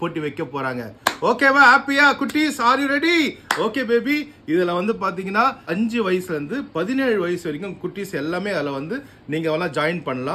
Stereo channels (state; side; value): identical; both; correlation 1.00